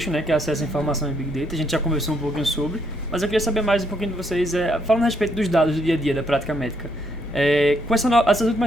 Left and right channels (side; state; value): both; normal; correlation 0.73